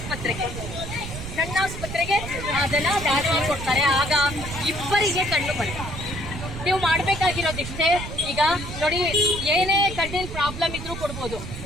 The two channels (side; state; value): right; noise; rumble, 8 dB below the sound